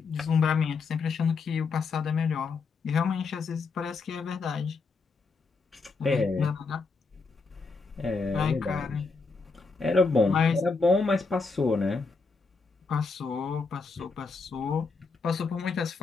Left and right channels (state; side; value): quieter; right; 4.4 dB